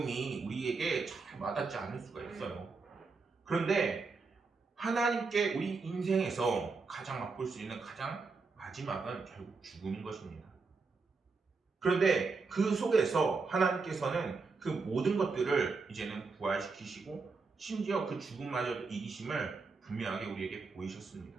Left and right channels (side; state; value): left; quieter; 4.3 dB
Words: 우리에게 잘 와닿지 않을 수가 있어요. 그런데 하나님께 우리 인생에서 가장 맛볼 수 있는 가장 마지막은 결국 죽음인 것입니다. 그런데 그 속에서 하나님께서는 그 모든 것들을 이제는 부활시키시고 심지어 그 죽음마저 이기심을 분명하게 우리에게 보이셨습니다.